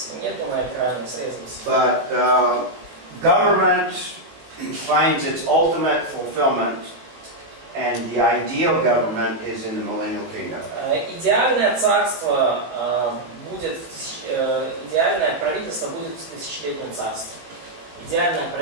нету на экране, срезался. But government finds its ultimate fulfillment, and the ideal government is in the millennial kingdom. Идеальное царство будет, идеальное правительство будет в тысячелетнем царстве. Идеальное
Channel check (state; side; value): late; left; 18 ms